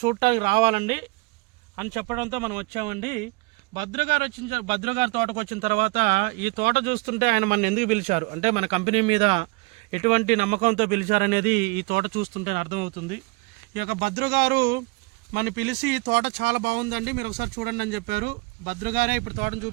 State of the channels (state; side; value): quieter; left; 25.8 dB